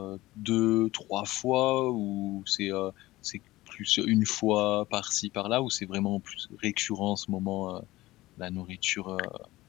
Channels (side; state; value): right; quieter; 18.0 dB